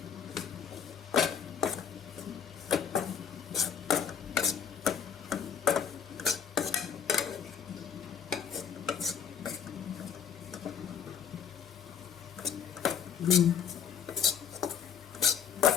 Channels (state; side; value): quieter; right; 7.8 dB